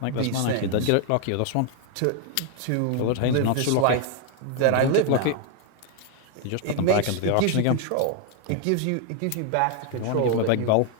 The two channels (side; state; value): both; different; correlation 0.00